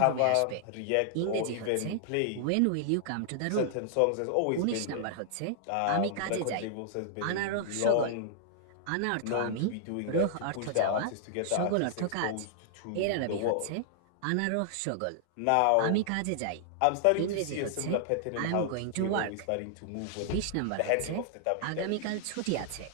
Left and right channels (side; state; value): both; different; correlation -0.01